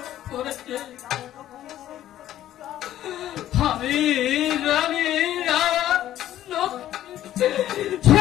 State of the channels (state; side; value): quieter; right; 12.6 dB